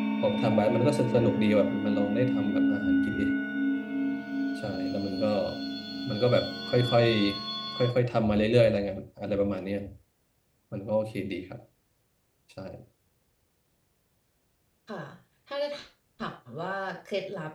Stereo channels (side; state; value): both; identical; correlation 1.00